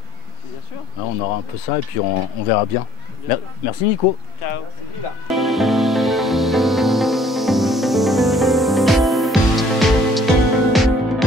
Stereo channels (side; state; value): both; normal; correlation 0.58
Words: Bien sûr. Là, on aura un peu ça et puis on verra bien. Merci Nico. Ciao.